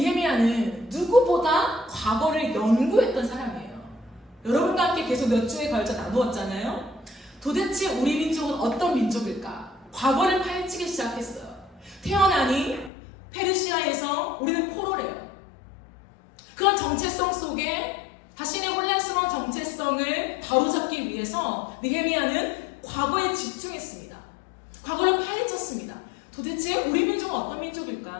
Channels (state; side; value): drops out; right; at 12.9 s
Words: 누구보다 과거를 연구했던 사람이에요. 여러분과 함께 계속 몇 주에 걸쳐 나누었잖아요. 도대체 우리 민족은 어떤 민족일까? 과거를 파헤치기 시작했어요. 태어나니 페르시아에서 우리는 포로래요. 그런 정체성 속에 자신의 혼란스러운 정체성을 바로잡기 위해서 느헤미야는 과거에 집중했습니다. 과거를 파헤쳤습니다. 도대체 우리 민족은 어떤